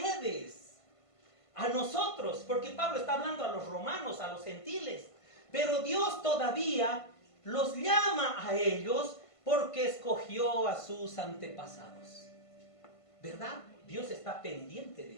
a nosotros, porque Pablo está hablando a los romanos, a los gentiles, pero Dios todavía los llama a ellos porque escogió a sus antepasados. ¿Verdad? Dios está pendiente de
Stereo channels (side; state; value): right; late; 1.5 ms